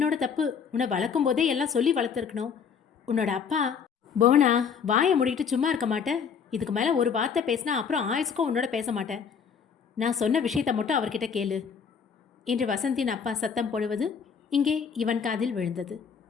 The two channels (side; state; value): right; quieter; 6.7 dB